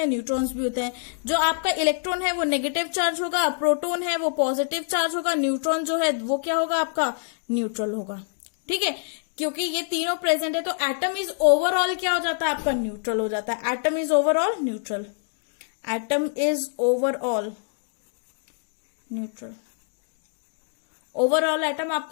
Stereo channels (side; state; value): right; silent; digital silence